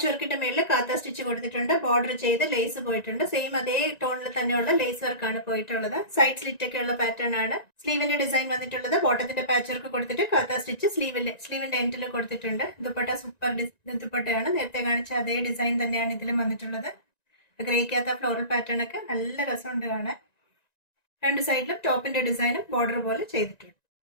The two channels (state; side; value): late; right; 1.9 ms